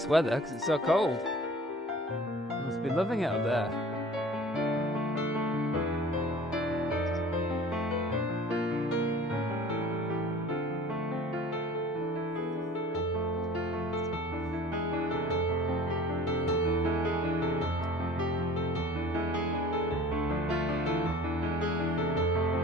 weather because it's so cold. Must be loving it up there.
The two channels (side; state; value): both; normal; correlation 0.45